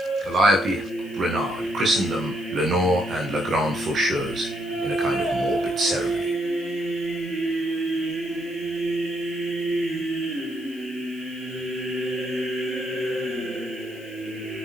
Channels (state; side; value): noise; left; hiss, 25 dB below the sound